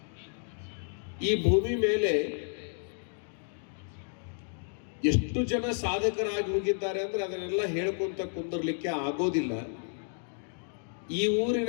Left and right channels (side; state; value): right; silent; 57 dB below the other